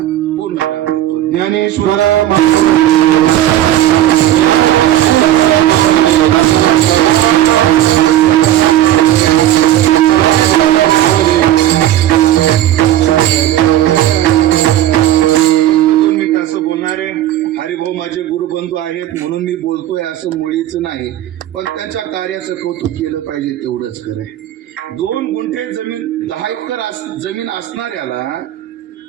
पूर्ण करतो. ज्ञानेश्वर हरिभाऊ माझे गुरुबंधू आहेत म्हणून मी बोलतोय असं मुळीच नाही, पण त्यांच्या कार्याचं कौतुक केलं पाहिजे तेवढंच करे. 2 गुंठे जमीन 10 एकर जमीन असणाऱ्याला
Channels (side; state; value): left; quieter; 12.8 dB